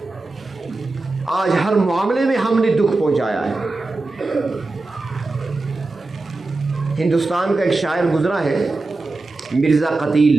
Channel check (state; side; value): quieter; left; 3.3 dB